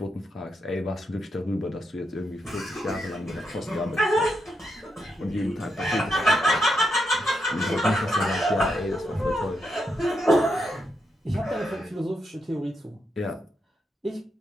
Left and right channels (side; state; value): both; normal; correlation 0.82